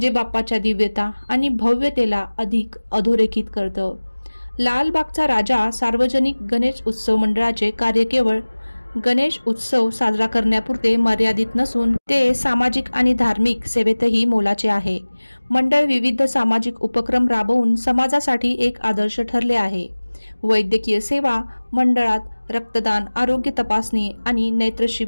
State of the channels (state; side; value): inverted; both; correlation -1.00